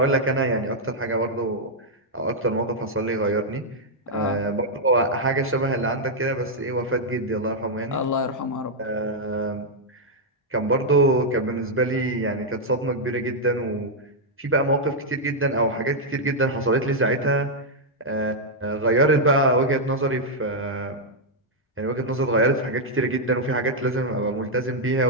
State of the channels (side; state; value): both; normal; correlation -0.04